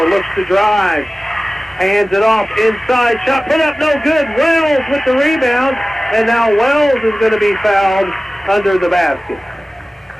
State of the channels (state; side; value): normal; both; correlation 0.97